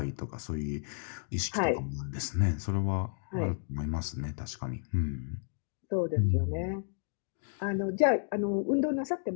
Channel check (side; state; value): right; silent; digital silence